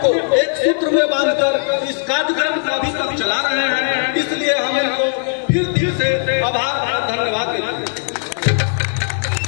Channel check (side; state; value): right; silent; 56 dB below the other